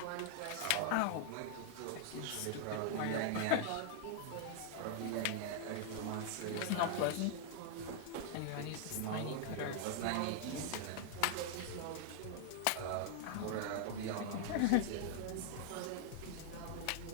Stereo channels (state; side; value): different; both; correlation -0.01